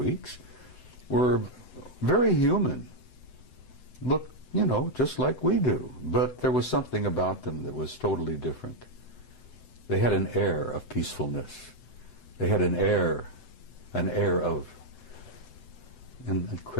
were very human. Looked, you know, just like we do. But there was something about them that was totally different. They had an air of peacefulness. They had an air of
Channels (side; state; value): right; late; 7.8 ms